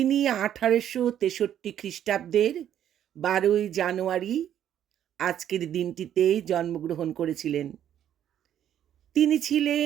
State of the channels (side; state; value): left; quieter; 10.4 dB